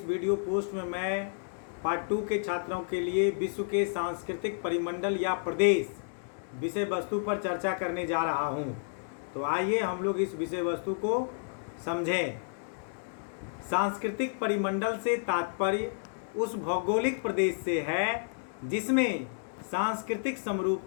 वीडियो पोस्ट में मैं पार्ट 2 के छात्रों के लिए विश्व के सांस्कृतिक परिमंडल या प्रदेश विषय वस्तु पर चर्चा करने जा रहा हूं। तो आइए हम लोग इस विषय वस्तु को समझें। सांस्कृतिक परिमंडल से तात्पर्य उस भौगोलिक प्रदेश से है जिसमें सांस्कृतिक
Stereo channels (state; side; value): silent; right; digital silence